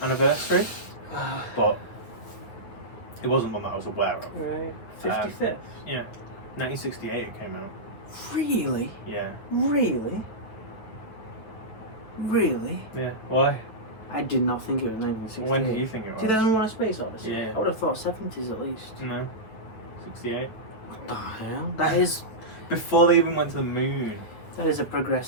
but it wasn't one that I was aware of. Right. 55th. Yeah, 1968 it came out. Really? Yeah. Really? Really? Yeah. Why? I did not think it was 1968. When do you think it was? 2001: A Space Odyssey. Yeah. I would have thought 70s at least. No. 68. What the hell? That is Before they even went to the moon. a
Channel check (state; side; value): late; right; 9.3 ms